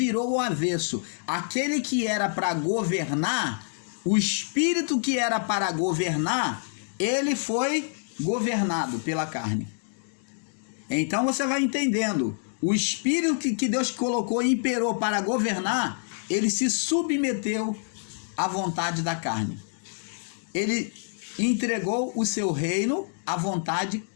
o avesso. Aquele que era para governar, o espírito que era para governar, ele foi governado pela carne. Então você vai entendendo. O espírito que Deus colocou e imperou para governar, ele se submeteu à vontade da carne. Ele entregou o seu reino à vontade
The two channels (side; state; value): right; silent; digital silence